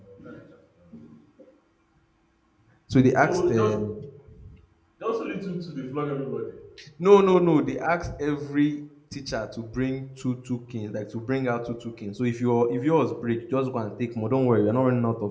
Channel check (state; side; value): identical; both; correlation 1.00